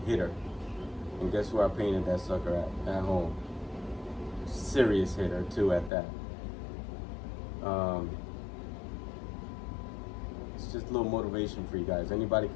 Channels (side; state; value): right; drops out; at 5.9 s